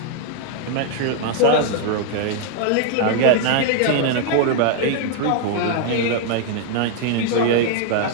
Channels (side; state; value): both; different; correlation 0.00